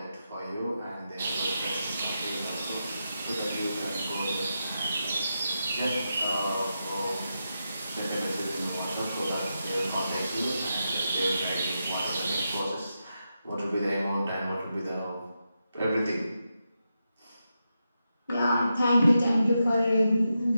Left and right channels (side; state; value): both; inverted; correlation -0.87